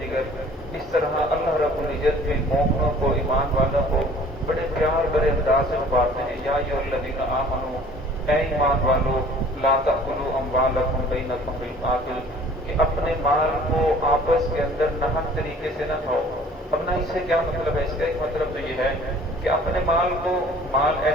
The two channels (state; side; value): normal; both; correlation 0.50